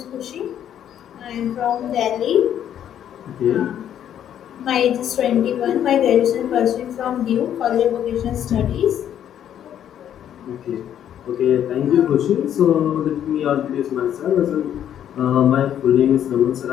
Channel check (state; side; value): quieter; right; 10.1 dB